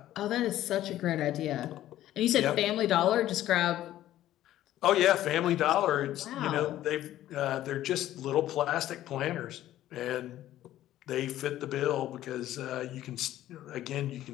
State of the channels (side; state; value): right; quieter; 13.4 dB